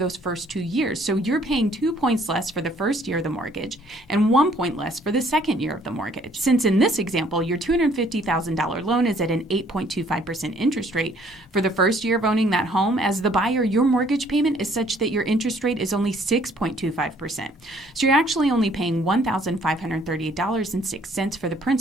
first 2 years. So you're paying 2 points less for the first year of the mortgage and 1 point less for the second year of the mortgage. Since in this example, your $250,000 loan is at an 8.25% interest rate for the first year of owning that home, as the buyer, your mortgage payment is such that your interest rate is only 6.25%. So you're actually only paying $1,538.06 for the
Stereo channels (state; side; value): normal; both; correlation 0.61